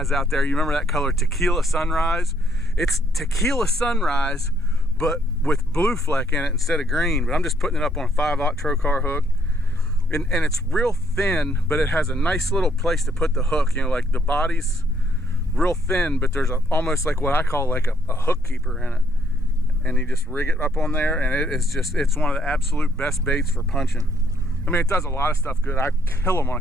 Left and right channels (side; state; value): both; normal; correlation 0.70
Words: out there, you remember that color Tequila Sunrise? It's Tequila Sunrise, but with blue fleck in it instead of green. But I'm just putting it up on a 5/0 trocar hook. And it's real thin, but it has a nice little place to put the hook. You know, like the body's real thin, but there's almost like what I call like a hook keeper in it. And you just rig it up on there, and it's one of the absolute best baits for punching. I mean, it does a lot of stuff good. I kill them on a